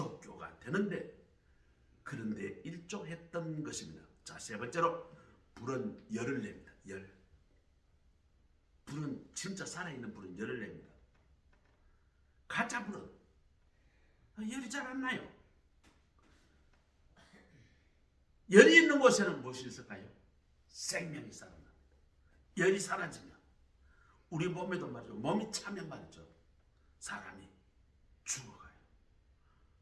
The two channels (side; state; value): both; identical; correlation 1.00